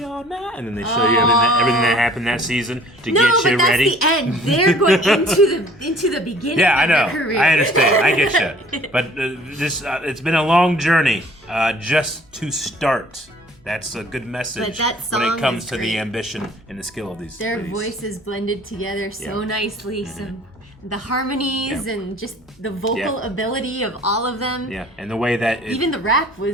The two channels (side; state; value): both; normal; correlation 0.52